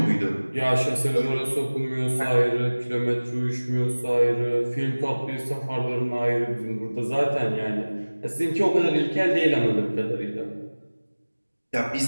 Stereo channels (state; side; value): inverted; both; correlation -1.00